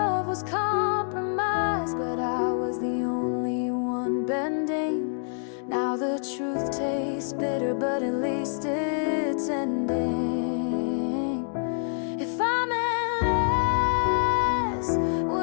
was compromise, but I was the only one bending. Now the truth tastes bitter, but at least it's ending. If I meant less,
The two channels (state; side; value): silent; right; digital silence